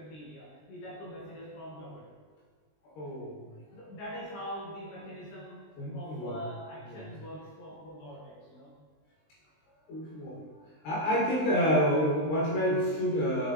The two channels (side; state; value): right; late; 20 ms